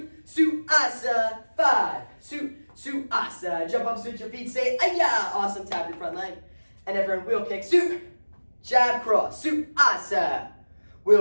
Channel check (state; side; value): inverted; both; correlation -1.00